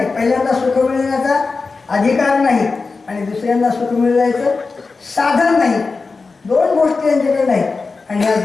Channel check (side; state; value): right; quieter; 4.2 dB